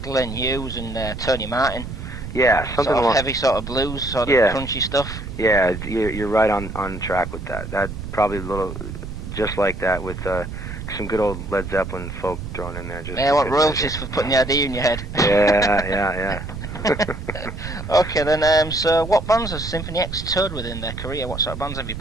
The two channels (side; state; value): right; noise; rumble, 8 dB below the sound